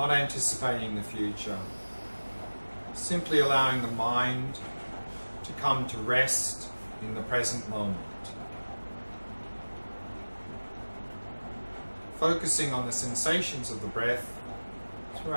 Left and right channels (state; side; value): inverted; both; correlation -1.00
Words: anticipating the future. Simply allowing the mind to come to rest in the present moment. Focusing on the sensations of the breath